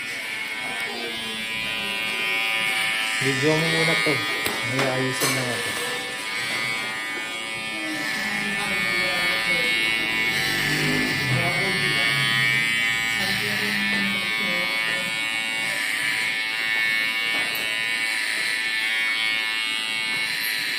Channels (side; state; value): both; identical; correlation 1.00